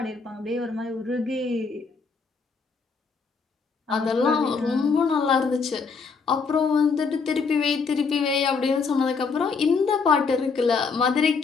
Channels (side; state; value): right; quieter; 4.9 dB